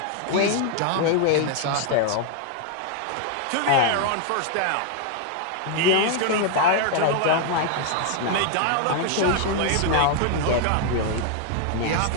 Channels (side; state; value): both; different; correlation 0.00